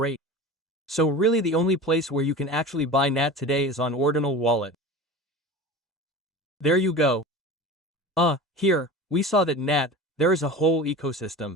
So really the only place where you can actually buy NAT today is on Ordinal Wallet. There you go. Here, we saw that NAT, there is a whole ecosystem.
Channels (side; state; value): both; normal; correlation 0.34